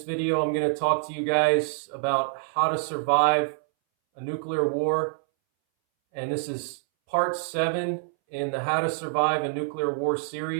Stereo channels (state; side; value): silent; left; 61 dB below the other